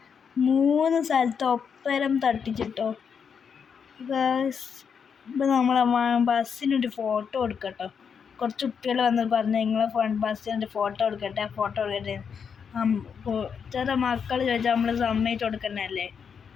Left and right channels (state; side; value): quieter; right; 6.7 dB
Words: 3 സ്ഥലത്ത് ഒപ്പരം തട്ടിച്ചിട്ടോ ഗൈസ്. ഇപ്പം നമ്മളെ ബസ്സിനൊരു ഫോട്ടോ എടുക്കട്ടോ. കുറച്ച് കുട്ടികൾ വന്ന് പറഞ്ഞു നിങ്ങളെ ബസ്സിനൊരു ഫോട്ടോ എടുക്കട്ടെ ചെറിയ മക്കൾ ചോദിച്ചാൽ നമ്മൾ സമ്മതിച്ച് കൊടുക്കണല്ലേ